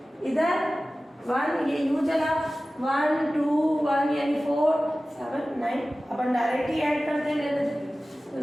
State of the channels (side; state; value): both; normal; correlation 0.96